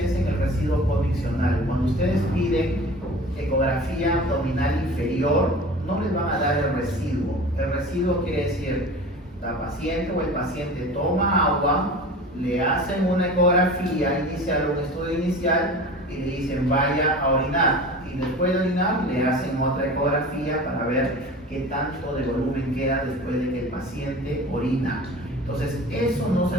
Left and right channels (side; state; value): both; normal; correlation 0.37